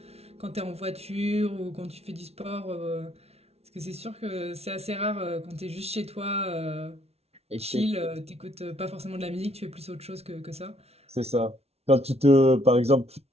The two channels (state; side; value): late; left; 0.30 ms